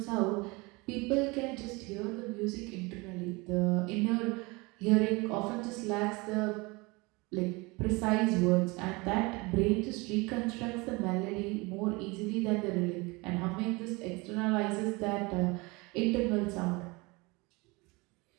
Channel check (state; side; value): quieter; left; 25.5 dB